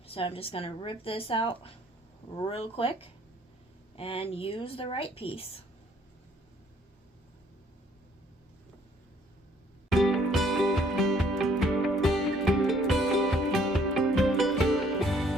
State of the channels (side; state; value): both; normal; correlation 0.62